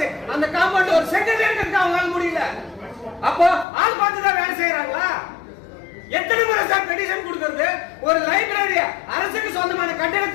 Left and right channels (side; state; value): right; drops out; at 3.7 s